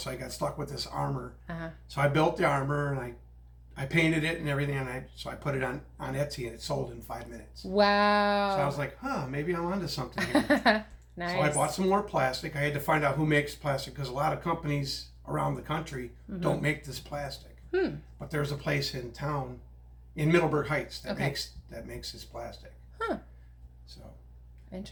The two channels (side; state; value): both; identical; correlation 1.00